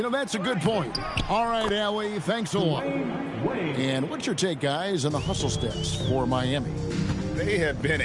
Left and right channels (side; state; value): both; identical; correlation 1.00